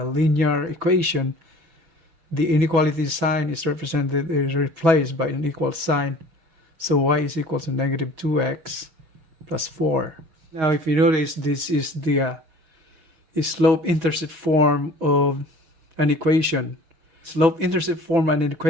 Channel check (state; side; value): late; left; 6.1 ms